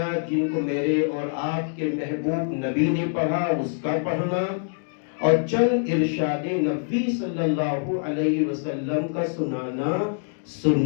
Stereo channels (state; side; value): silent; right; digital silence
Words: جن کو میرے اور آپ کے محبوب نبی نے پڑھا اس کا پڑھنا، اور چند ارشاد نبی صلی اللہ علیہ وسلم کا سنانا